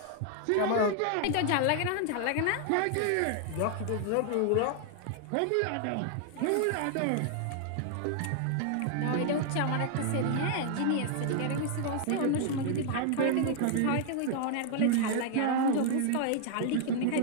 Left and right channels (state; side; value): different; both; correlation 0.00